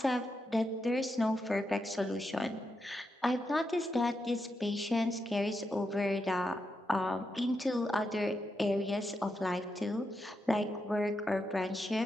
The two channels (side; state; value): both; normal; correlation 0.85